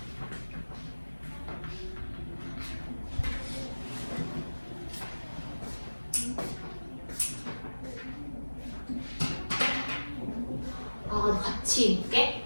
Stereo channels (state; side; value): inverted; both; correlation -1.00